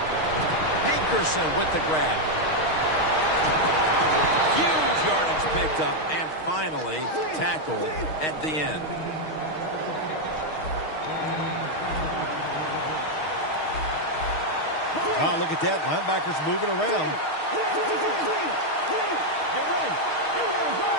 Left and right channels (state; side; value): late; right; 6.4 ms